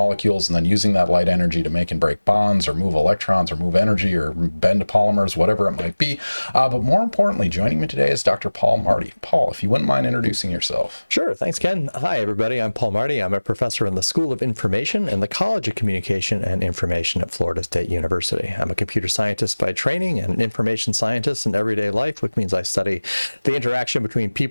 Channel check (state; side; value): inverted; both; correlation -1.00